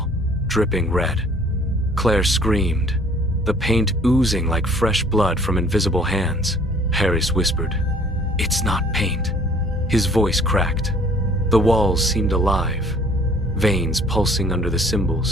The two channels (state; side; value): normal; both; correlation 0.56